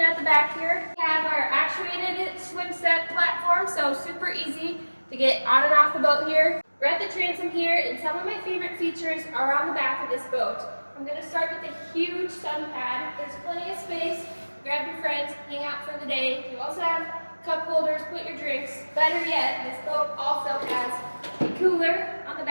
at the back here, we have our actuated swim set platform, so super easy to get on and off the boat here. We're at the transom here, and some of my favorite features are on the back of this boat. I'm going to start with a huge sun pad. There's plenty of space. Grab your friends, hang out for the day. You also have cup holders, put your drinks. Better yet, this boat also has a cooler on the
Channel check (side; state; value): both; inverted; correlation -1.00